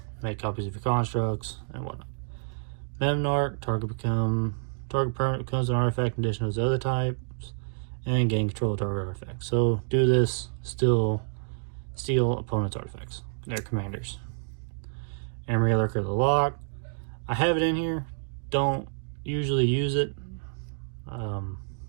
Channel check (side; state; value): left; silent; digital silence